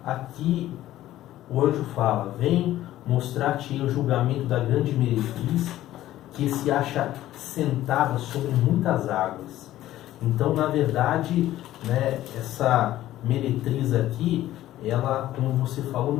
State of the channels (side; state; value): right; quieter; 14.2 dB